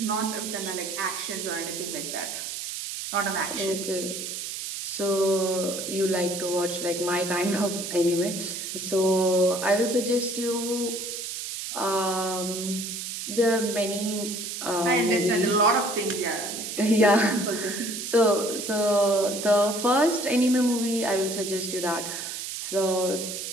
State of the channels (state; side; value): noise; right; hiss, 6 dB below the sound